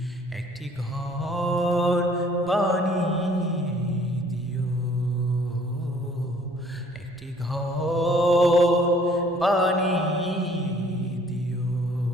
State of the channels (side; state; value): both; normal; correlation 0.58